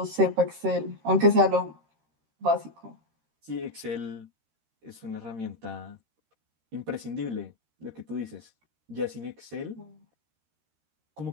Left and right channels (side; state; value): left; late; 13 ms